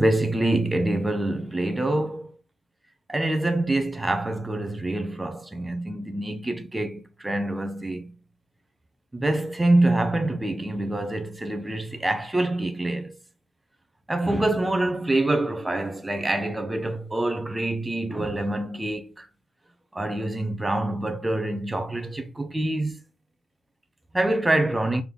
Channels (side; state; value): both; normal; correlation 0.94